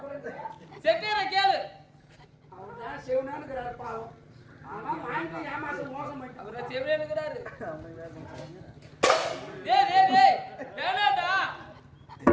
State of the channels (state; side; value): identical; both; correlation 1.00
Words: கொடுங்க. செட்டியரை கேளு. அவர் தான் சிவனான்னு இருக்கிறாரு பாவம். ஆனா வாங்கி ஏமாசம் மோசம் பண்ணிட்டான். அவரை செவியனுக்குறாரு. டேய் டேய் டேய், வேணாடா.